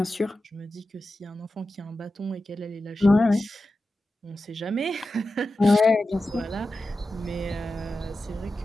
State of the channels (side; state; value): both; normal; correlation 0.92